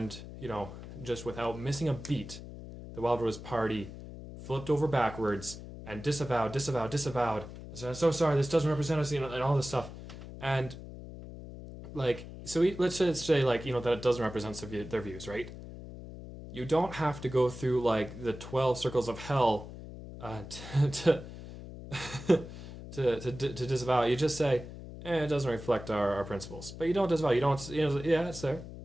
just without missing a beat, the Wildrose Party flipped over backwards and disavowed. I said, I'm so sorry, this doesn't represent us, and all this stuff. And, let's just say, that it doesn't represent their views, right? You don't have to go through, the 12 circles of hell to disavow it. You just say, it doesn't reflect our principles. But you don't disavow. You don't, yeah, it's there.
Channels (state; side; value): noise; left; hum, 12 dB below the sound